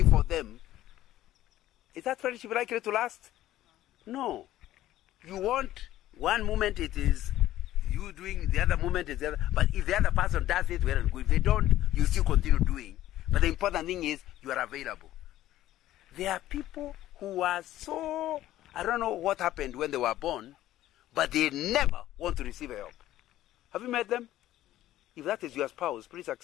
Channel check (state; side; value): quieter; right; 14.0 dB